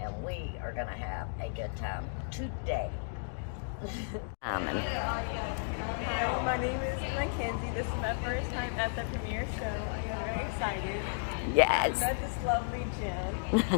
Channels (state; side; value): silent; right; digital silence